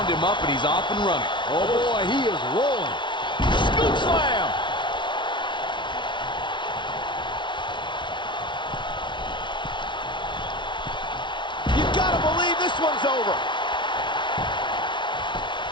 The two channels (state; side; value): late; right; 0.23 ms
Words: him up and he's off and running. Oh, boy, he is rolling. Scoop slam! You gotta believe this one's over.